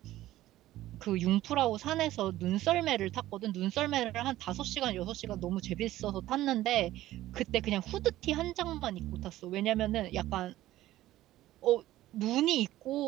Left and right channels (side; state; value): left; quieter; 15.0 dB